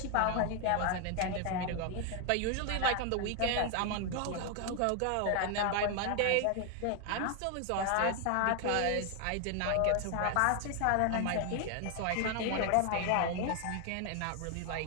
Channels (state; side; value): different; both; correlation 0.00